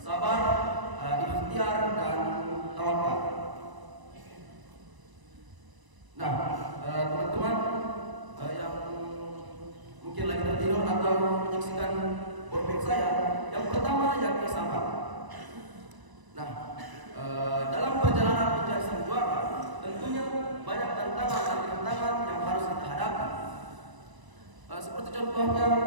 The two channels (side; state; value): left; late; 1.0 ms